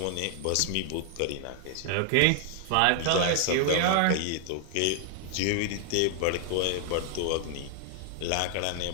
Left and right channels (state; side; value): different; both; correlation 0.00